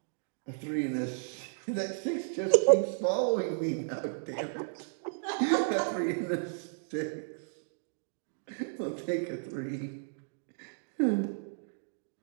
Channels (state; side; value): silent; left; digital silence